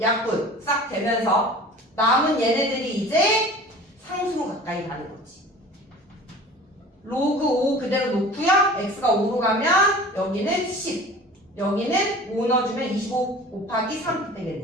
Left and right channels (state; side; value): normal; both; correlation 0.42